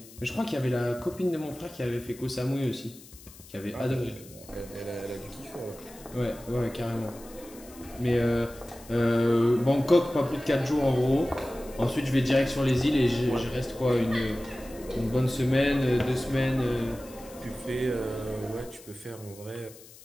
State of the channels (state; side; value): noise; left; hiss, 20 dB below the sound